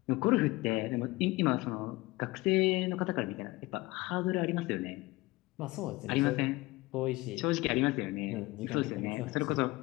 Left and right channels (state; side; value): quieter; right; 21.0 dB